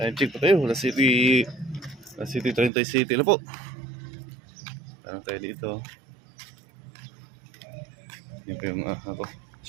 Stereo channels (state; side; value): drops out; left; at 2.7 s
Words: check pa tayo. Last City 30 City na po. Tanong tayo dito. Yan po yung